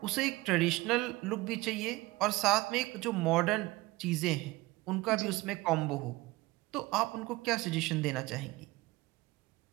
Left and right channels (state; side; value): quieter; left; 20.4 dB